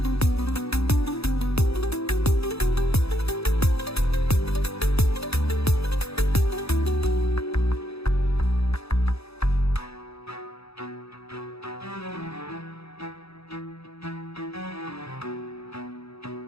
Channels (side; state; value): right; late; 0.78 ms